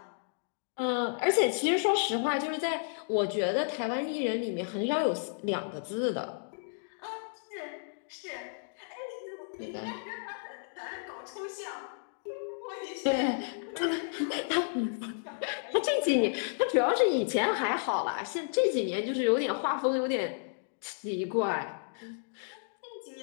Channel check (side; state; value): right; silent; digital silence